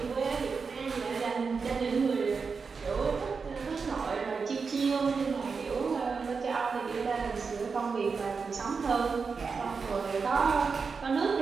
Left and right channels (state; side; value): quieter; left; 5.1 dB